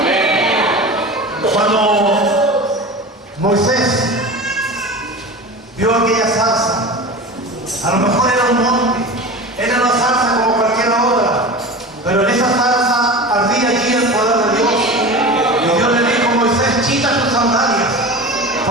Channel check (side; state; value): both; normal; correlation 0.32